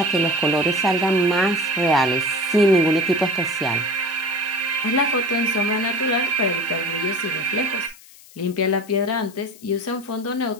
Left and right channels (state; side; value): noise; left; hiss, 23 dB below the sound